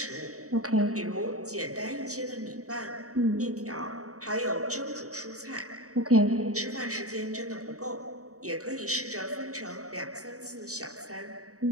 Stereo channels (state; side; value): late; left; 0.66 ms